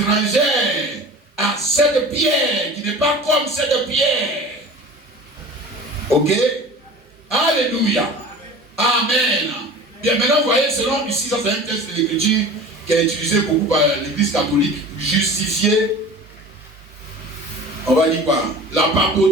à cette pierre, qui n'est pas comme cette pierre. Ok? Alléluia. Amen. Bien, maintenant, vous voyez, selon ici, ça c'est un texte de l'écriture qui est utilisé beaucoup par l'église catholique, justifier, on va dire quoi? La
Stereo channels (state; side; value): normal; both; correlation 0.39